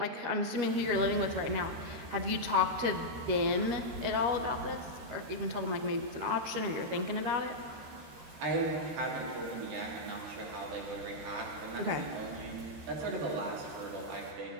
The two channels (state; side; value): late; left; 13 ms